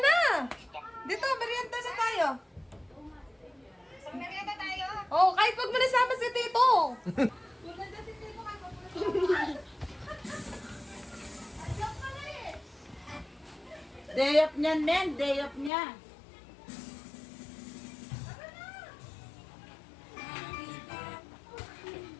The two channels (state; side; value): drops out; right; at 15.7 s